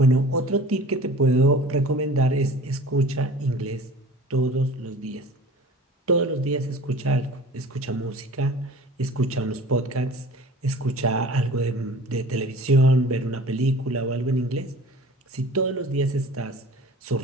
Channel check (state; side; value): normal; both; correlation 0.43